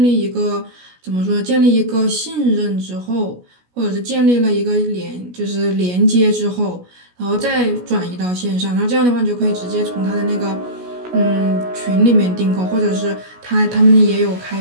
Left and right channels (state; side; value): late; left; 17 ms